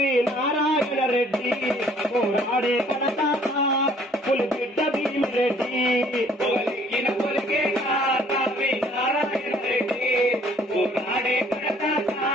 నారాయణ రెడ్డి పోరాడే కడతాత పులిబిడ్డ భీమిరెడ్డి పొగలెక్కిన పొలికే కారావి నారాయణ రెడ్డి పోరాడే కడతాత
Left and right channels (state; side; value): normal; both; correlation 0.59